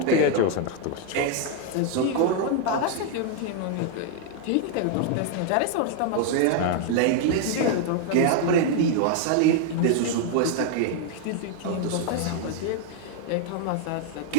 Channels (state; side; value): different; both; correlation 0.00